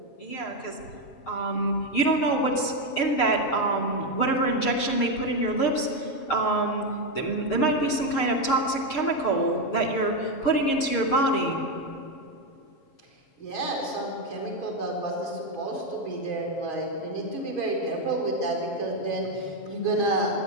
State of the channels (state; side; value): late; right; 6.5 ms